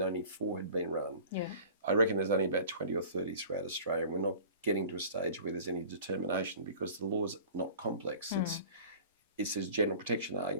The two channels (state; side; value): inverted; both; correlation -0.44